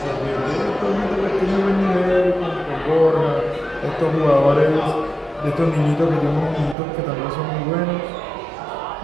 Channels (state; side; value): drops out; left; at 6.8 s